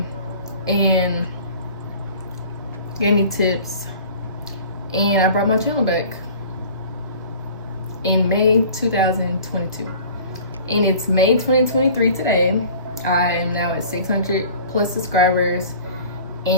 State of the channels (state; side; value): inverted; both; correlation -0.45